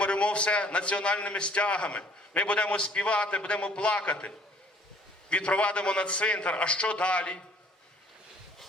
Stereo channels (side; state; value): both; normal; correlation 0.58